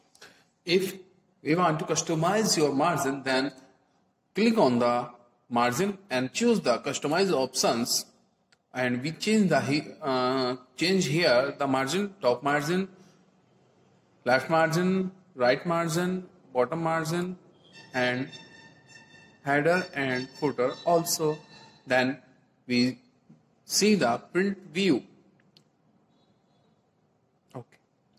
if we want to customize your margin, then click on the margin and choose the customize options, and we change the change here the margin, top margin, left margin, right margin, bottom margin and header and footer also. Then we see the print view. Okay,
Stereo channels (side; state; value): both; identical; correlation 1.00